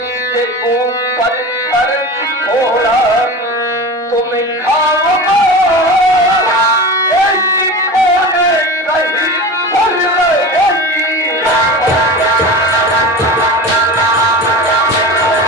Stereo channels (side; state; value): both; normal; correlation 0.31